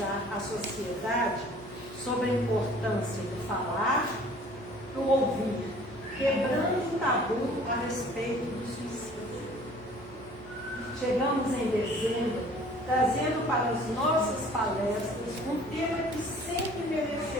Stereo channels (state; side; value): noise; left; hum, 19 dB below the sound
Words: a sociedade sobre a importância do falar, do ouvir, quebrando o tabu a respeito do suicídio. Chegamos em dezembro, trazendo para as nossas palestras um tema que sempre